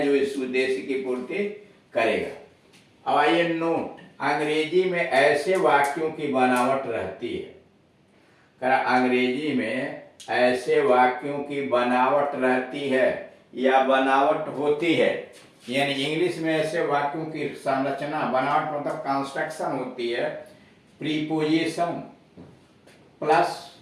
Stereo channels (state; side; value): identical; both; correlation 1.00